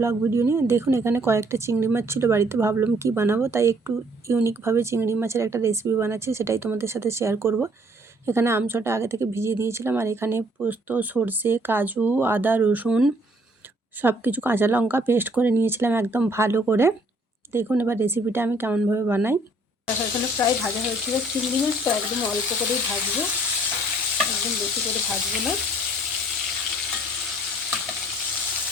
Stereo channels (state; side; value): normal; both; correlation 0.62